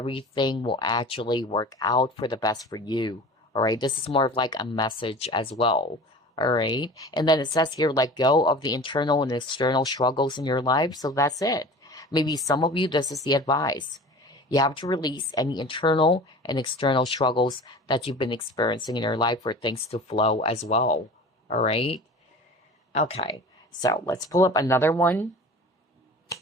will actually work out for the best for you, all right? This is more of like a message as well. All right. And then it says here, let go of the internal and external struggles in your life. So that's it. Maybe some of you, this is the advice. You have to release any internal and external struggles that you've been experiencing in your life for things to flow as well. All right. Okay. So let's pull up another one.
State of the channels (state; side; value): normal; both; correlation 0.39